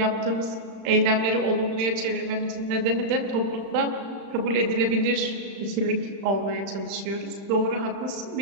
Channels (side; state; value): left; late; 35 ms